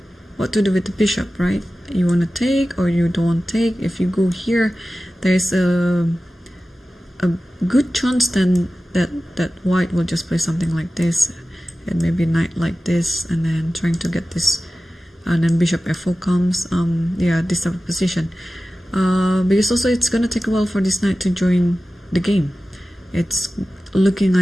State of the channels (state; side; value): normal; both; correlation 0.95